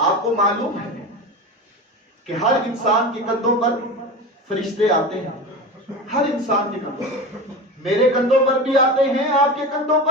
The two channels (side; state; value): both; normal; correlation 0.28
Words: کو معلوم ہے کہ ہر انسان کے کندھوں پر فرشتے آتے ہیں. ہر انسان کے کندھوں پر, میرے کندھوں پر بھی آتے ہیں, آپ کے کندھوں